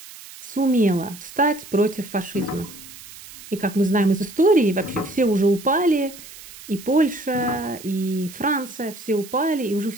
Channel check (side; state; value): right; noise; hiss, 17 dB below the sound